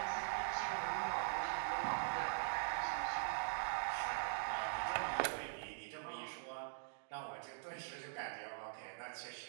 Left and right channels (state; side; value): silent; left; digital silence